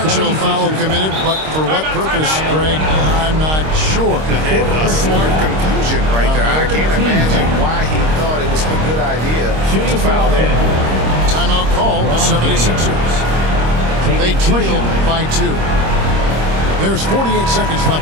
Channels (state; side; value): late; left; 26 ms